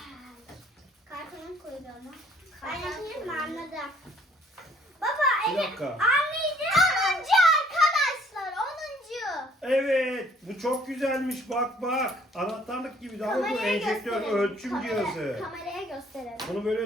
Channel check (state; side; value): normal; both; correlation 0.60